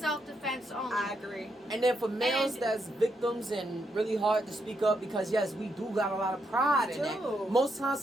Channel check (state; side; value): normal; both; correlation 0.80